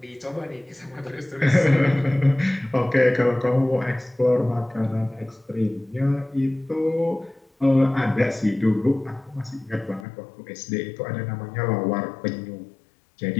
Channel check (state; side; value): drops out; right; at 10.1 s